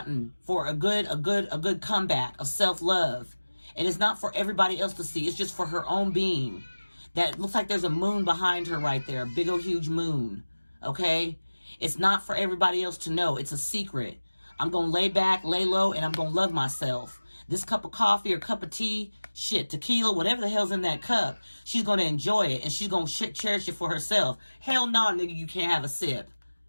for a good comeback of self-love. And it's not for everybody else to see. It's just for her own being. That looks like there's a moon behind her right there. A big old huge moon. Okay? It's not for everybody else to know. It's a secret. I'm going to lay back, lay low, and I'm going to love myself. This cup of coffee or cup of tea, shit, tequila, whatever the hell's in that cup, she's going to enjoy it. And she's going to cherish it for herself. Hell no, nigga, you can't have a sip.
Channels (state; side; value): inverted; both; correlation -1.00